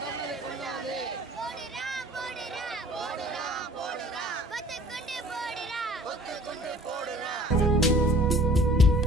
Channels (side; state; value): both; normal; correlation 0.51